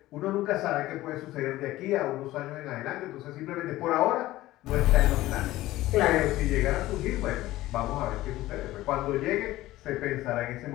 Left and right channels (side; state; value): right; quieter; 16.5 dB